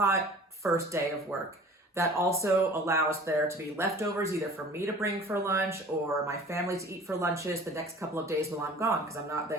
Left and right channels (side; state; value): both; normal; correlation 0.45